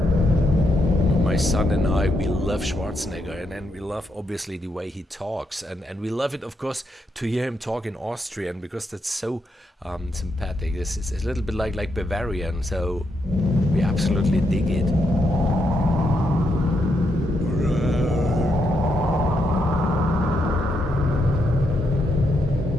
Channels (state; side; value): normal; both; correlation 0.80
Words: My son and I, we love Schwarzenegger, and we love obviously the way he talks, and we love it, of course, to hear him talk in Austrian, because that's so sympathetic. This is a little bit like Bavarian, so we absolutely dig it.